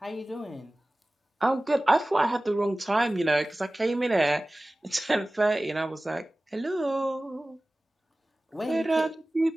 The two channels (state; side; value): normal; both; correlation 0.97